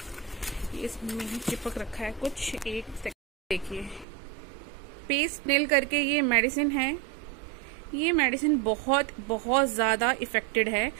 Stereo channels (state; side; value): drops out; left; at 4.0 s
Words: ये इसमें ही चिपक रखा है कुछ, एक सेकंड देखिए। पेस्ट नेल करके ये मेडिसिन है। ये मेडिसिन बहुत बहुत ज्यादा इफेक्टिव है।